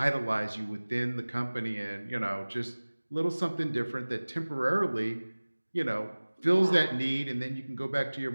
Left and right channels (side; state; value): both; inverted; correlation -1.00